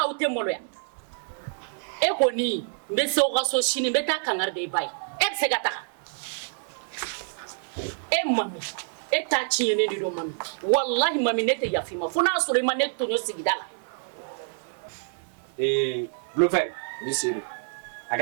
aw tɛ maloya e kɔni n bɛ se aw ka so sini n bɛ taa kangari da i ba ye e bɛ se ka taga e mami e t'a tiɲɛnen de don mami wallahi mami ne tɛ yafa i ma fo n'a sɔrɔ i ma ne tɔɲɔ sigida la. Blofɛ ni seeri a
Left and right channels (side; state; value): left; silent; 60 dB below the other